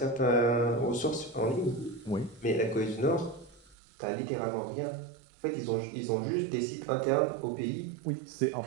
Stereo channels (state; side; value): drops out; left; at 3.8 s